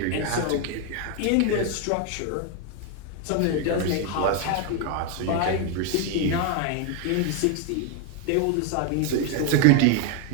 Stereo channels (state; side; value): different; both; correlation 0.01